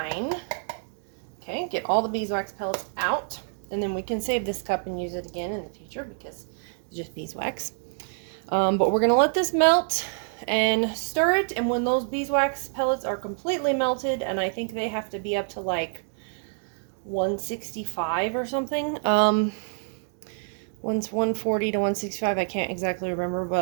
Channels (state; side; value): silent; left; 60 dB below the other